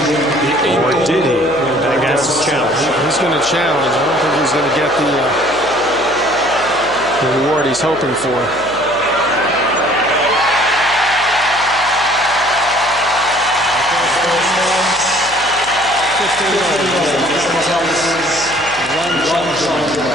Or did he? Agassi challenge. He's going to challenge. I don't think he's going to get the reward he's hoping for.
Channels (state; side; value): noise; left; hum, 19 dB below the sound